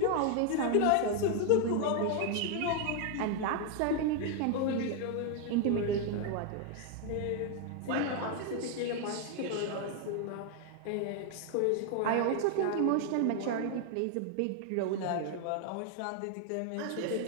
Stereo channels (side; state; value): both; different; correlation 0.00